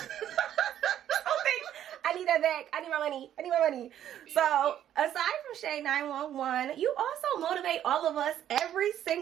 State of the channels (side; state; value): left; quieter; 10.9 dB